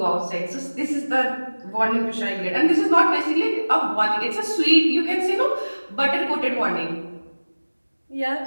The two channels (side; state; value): both; inverted; correlation -1.00